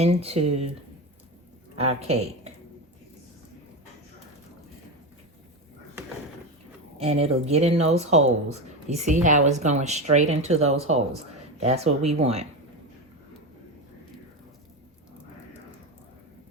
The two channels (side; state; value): both; normal; correlation 0.18